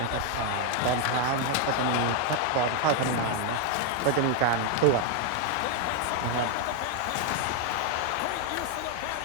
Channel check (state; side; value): different; both; correlation 0.00